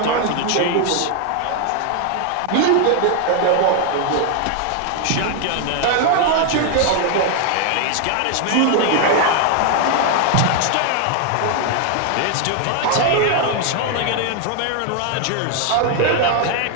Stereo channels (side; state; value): both; different; correlation 0.00